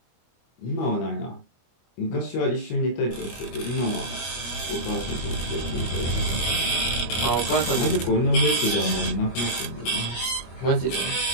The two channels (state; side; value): late; right; 24 ms